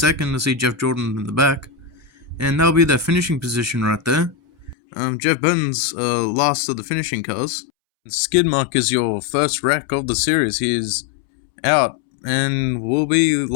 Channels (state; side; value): drops out; right; at 4.8 s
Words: to see Jeff Jordan in the back. And that'll be their finishing position right there. Jeff Burton's last of the finishing cars. Skidmark is your first wreck of the series. He is out and will be